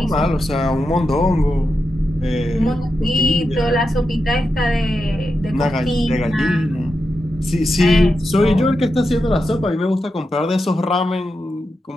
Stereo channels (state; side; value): normal; both; correlation 0.88